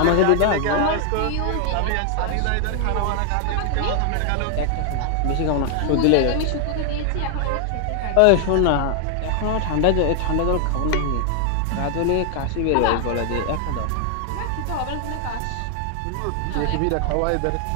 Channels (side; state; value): both; different; correlation 0.00